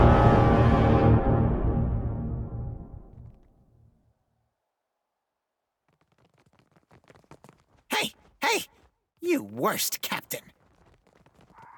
Hey! Hey! You worst captain!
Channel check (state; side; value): identical; both; correlation 1.00